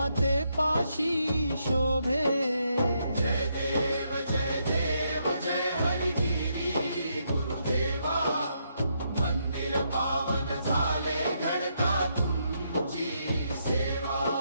पाशी शोभे. जय देव जय हरिगिरी गुरुदेवा, मंदिर पावन झाले घडता तुमची सेवा.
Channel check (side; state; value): both; inverted; correlation -0.77